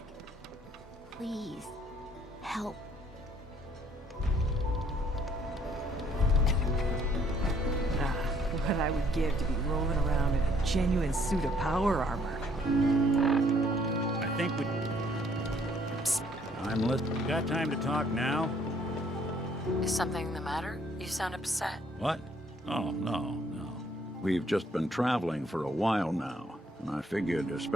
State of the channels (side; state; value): both; normal; correlation 0.64